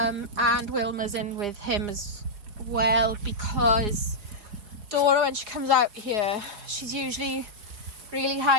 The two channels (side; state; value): left; late; 4.5 ms